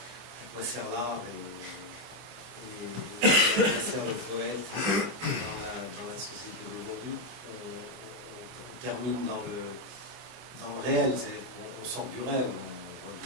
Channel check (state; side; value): late; left; 24 ms